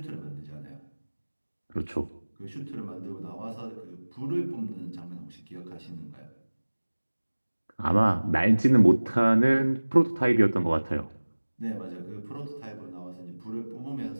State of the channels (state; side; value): inverted; both; correlation -1.00